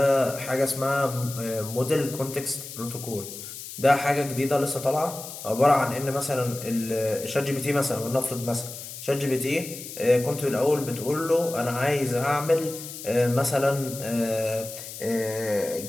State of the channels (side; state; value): left; noise; hiss, 11 dB below the sound